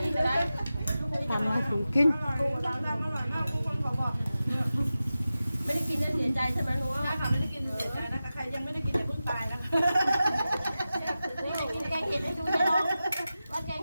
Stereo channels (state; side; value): inverted; both; correlation -0.94